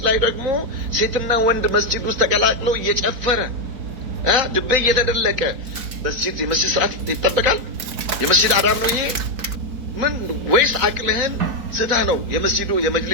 ላይ ደግሞ ሴትና ወንድ መስጂድ ውስጥ ተቀላቅለው እየጨፈረ ድቤ እየተደለቀ የመስጂድ ስርዓት ይጠበቃል? የመስጂድ አዳብ ነው ይሄ? ምን ወይስ አቅልህን ስተህ ነው የመስጂዱ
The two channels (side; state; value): left; late; 3.8 ms